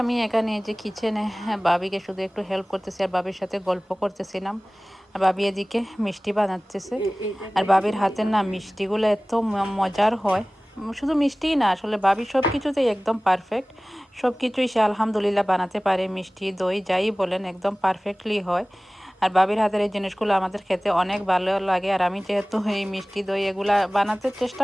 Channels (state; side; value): normal; both; correlation 0.98